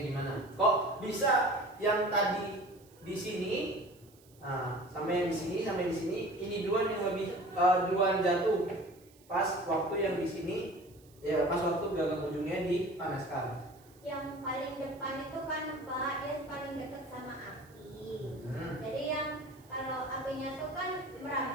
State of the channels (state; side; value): noise; right; hiss, 28 dB below the sound